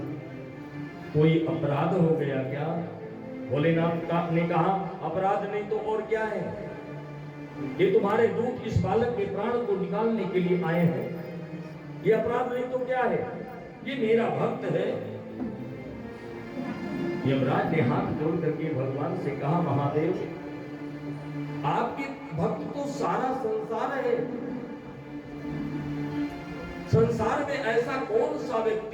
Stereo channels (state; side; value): identical; both; correlation 1.00